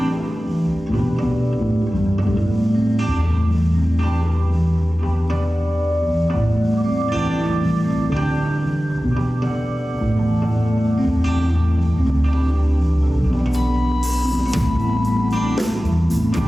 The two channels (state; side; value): normal; both; correlation 0.96